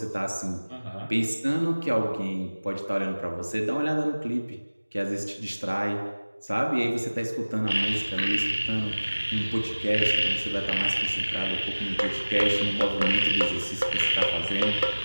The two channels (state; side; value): inverted; both; correlation -1.00